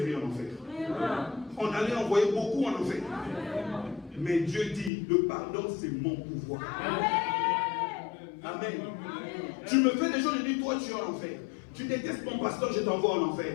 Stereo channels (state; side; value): drops out; right; at 4.9 s